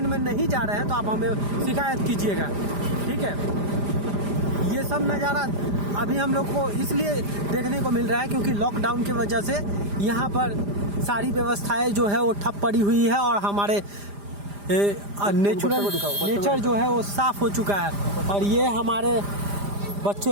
में नहीं जा रहे हैं तो आप हमें शिकायत कीजिएगा, ठीक है। ये सब नज़ारा अभी हम लोग को इसलिए देखने को मिल रहा है क्योंकि लॉकडाउन की वजह से यहाँ पर सारी व्यवस्थाएं जो है वो ठप पड़ी हुई है और हमारे नेचर जो है वो साफ हो चुका है। और ये हमारे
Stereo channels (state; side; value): late; left; 5.0 ms